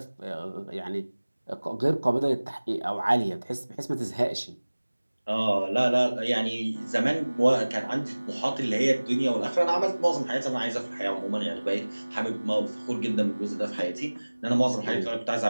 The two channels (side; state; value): both; inverted; correlation -1.00